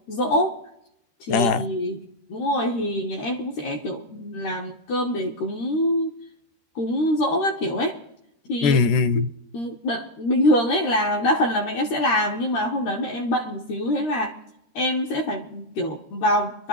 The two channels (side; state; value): right; late; 13 ms